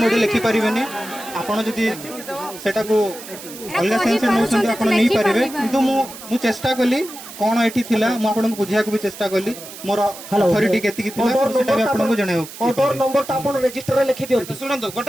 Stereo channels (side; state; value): right; noise; hiss, 14 dB below the sound